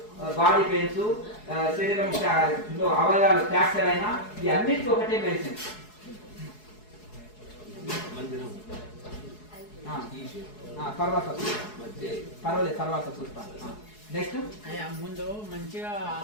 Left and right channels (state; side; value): late; right; 4.7 ms